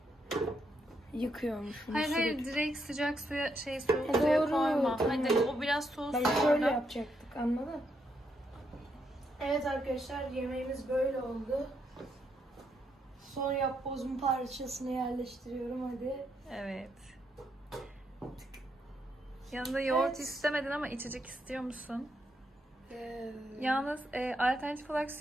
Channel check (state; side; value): normal; both; correlation 0.78